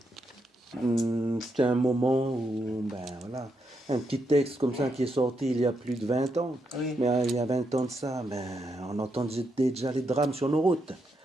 c'était un moment où, ben voilà, un petit texte comme ça qui est sorti il y a plus de 20 ans. Oui. Mais il y a 20 ans de ça, ben, on entendait déjà les drames sur nos routes.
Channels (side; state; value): both; normal; correlation 0.81